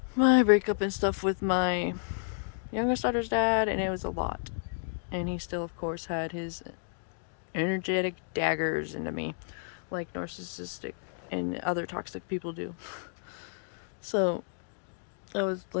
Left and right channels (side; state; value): right; silent; digital silence